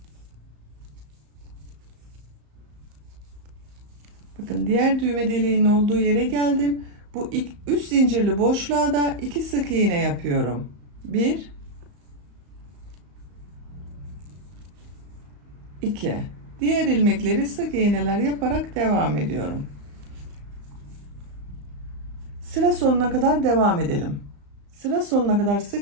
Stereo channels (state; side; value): late; left; 34 ms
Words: Bakın diğer düğme deliğinin olduğu yere geldim. Bu 3 zincirli boşluğa da 2 sık iğne yapıyorum. 1, 2. Diğer ilmekleri sık iğneler yaparak devam ediyorum. Sıra sonuna kadar devam edelim. Sıra sonuna kadar